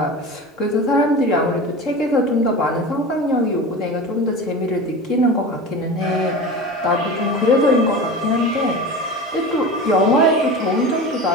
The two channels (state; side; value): normal; both; correlation 0.31